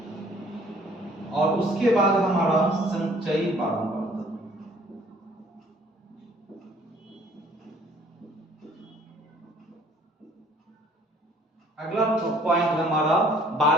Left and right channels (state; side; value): normal; both; correlation 0.57